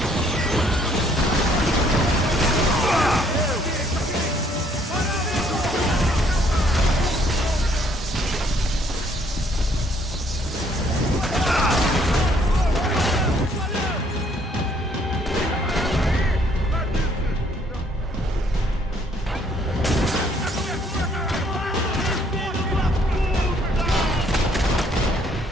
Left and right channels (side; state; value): both; normal; correlation 0.65